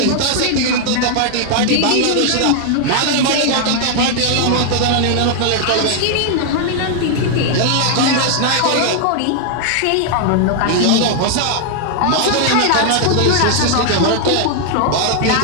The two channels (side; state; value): both; different; correlation 0.00